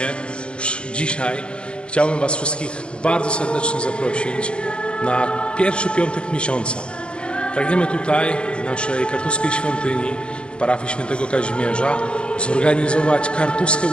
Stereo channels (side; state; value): right; late; 0.055 ms